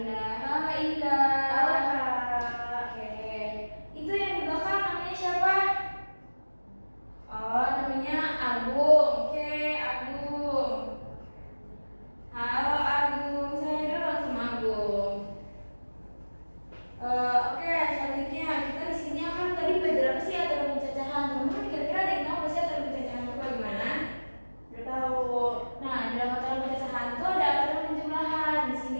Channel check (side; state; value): both; inverted; correlation -1.00